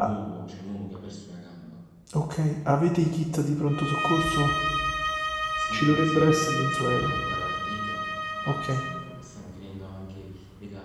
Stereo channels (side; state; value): both; identical; correlation 1.00